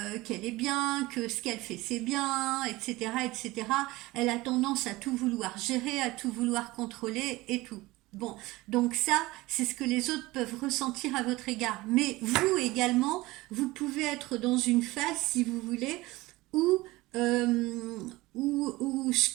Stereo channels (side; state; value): left; quieter; 20.0 dB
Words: est bien, que ce qu'elle fait c'est bien, etc., etc. Elle a tendance à tout vouloir gérer, à tout vouloir contrôler et tout. Bon, donc ça, c'est ce que les autres peuvent ressentir à votre égard. Mais vous également, vous pouvez être dans une phase, si vous voulez, où ce